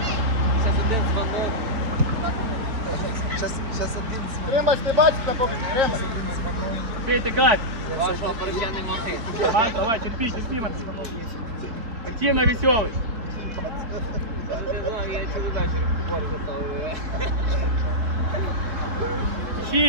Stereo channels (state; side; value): late; left; 4.3 ms